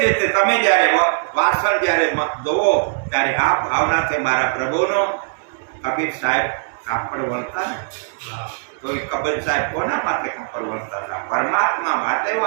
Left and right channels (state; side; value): silent; left; digital silence